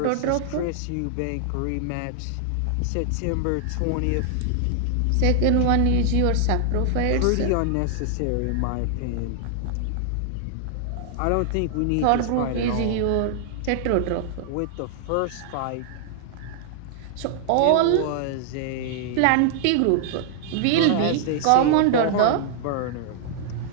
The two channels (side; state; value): both; different; correlation 0.00